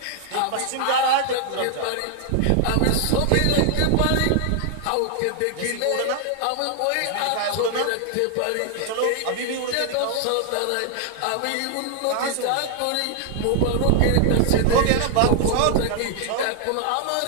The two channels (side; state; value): both; different; correlation 0.00